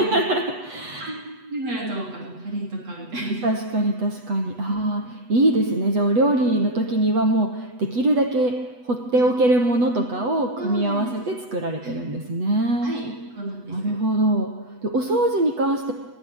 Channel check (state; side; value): late; left; 8.1 ms